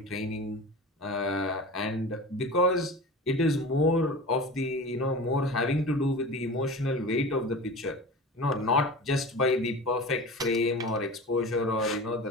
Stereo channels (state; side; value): normal; both; correlation 0.33